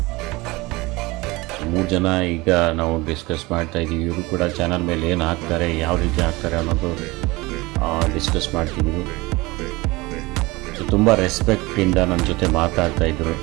3 ಜನ ಈಗ ನಾವು ಡಿಸ್ಕಸ್ ಮಾಡ್ತಾ ಇದ್ದೀವಿ. ಇವರು ಕೂಡ ಚಾನಲ್ ಮೇಲೆ ಏನು ಹಾಕ್ತಾರೆ, ಯಾವ ರೀತಿ ಹಾಕ್ತಾರೆ ಅನ್ನೋದು ಡಿಸ್ಕಸ್ ಮಾಡ್ತಿದ್ದೀವಿ. ಸೊ ತುಂಬ ರೆಸ್ಪೆಕ್ಟಿಂದ ನನ್ನ ಜೊತೆ ಮಾತಾಡ್ತಾಯಿದ್ರು.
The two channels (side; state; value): left; quieter; 22.4 dB